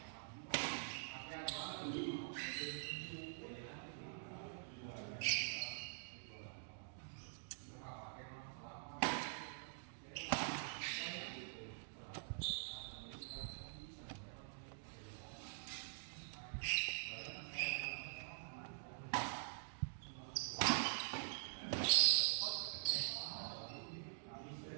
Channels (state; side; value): silent; left; digital silence